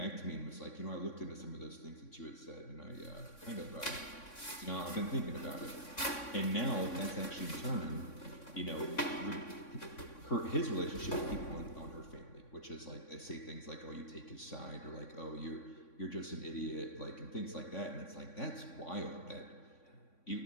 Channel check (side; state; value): right; late; 3.6 ms